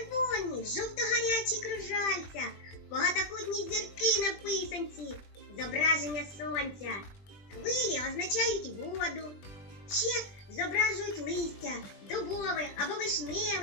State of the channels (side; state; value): right; late; 20 ms